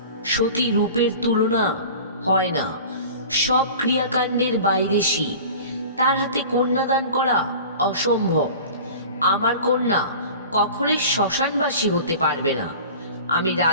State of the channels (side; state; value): both; inverted; correlation -0.39